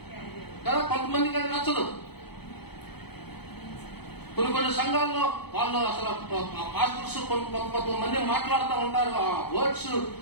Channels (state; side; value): late; right; 0.97 ms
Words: కదా. కొంతమందికి అది నచ్చదు. కొన్ని సంఘాల్లో వాళ్ళు అసలు పాస్టర్స్ కొంతమంది మాట్లాడుతూ ఉంటారు.